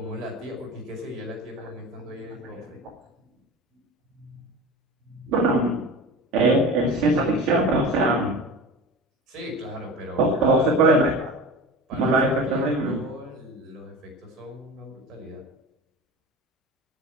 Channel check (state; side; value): normal; both; correlation 0.33